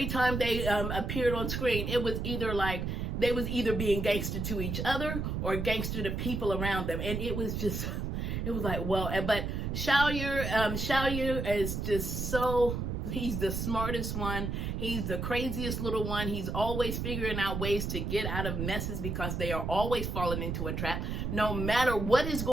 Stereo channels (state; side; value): noise; right; rumble, 2 dB below the sound